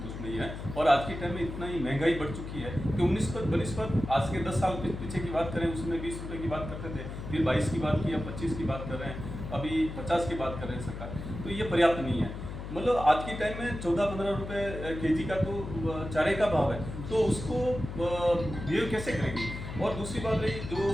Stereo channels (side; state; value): left; noise; hum, 8 dB below the sound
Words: नहीं है। और आज के टाइम में इतना ही महंगाई बढ़ चुकी है कि 19 पर 22 पर आज के 10 साल पीछे की बात करें उसमें 20 रुपये की बात करते थे, फिर 22 की बात की, अब 25 की बात कर रहे हैं, अभी 50 की बात कर रहे हैं सरकार। तो ये पर्याप्त नहीं है। मतलब आज के टाइम में 14-15 रुपए केजी का तो चारे का भाव है, तो उसको बिहेव कैसे करेगी। और दूसरी बात रही